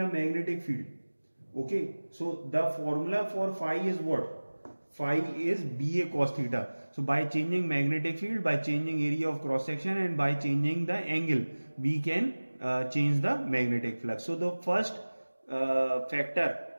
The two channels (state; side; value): inverted; both; correlation -1.00